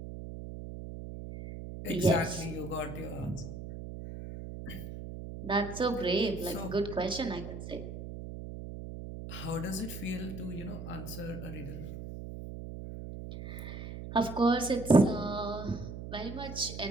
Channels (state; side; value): noise; right; hum, 9 dB below the sound